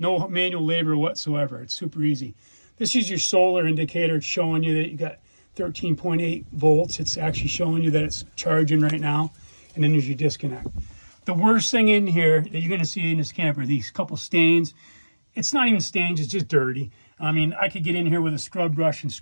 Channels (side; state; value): both; inverted; correlation -1.00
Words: manual labor whatsoever. It's super easy. This is your solar indicator. It's showing you that you got 13.8 volts. It's actually showing you that it's charging right now. And then there's your disconnect. The worst thing in here that you're going to see in this camper, these couple stains. It's not even stains, it's just dirty. I mean, I could get in here with a scrub brush and